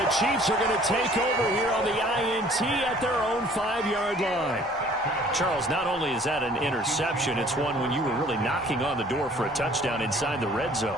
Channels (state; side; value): normal; both; correlation 0.54